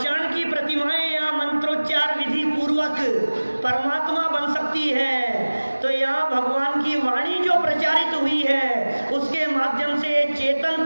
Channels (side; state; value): both; inverted; correlation -1.00